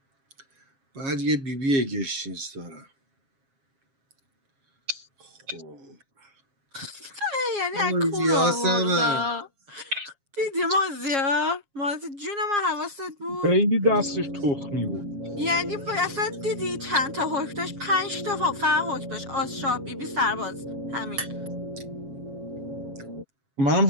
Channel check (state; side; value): late; left; 7.3 ms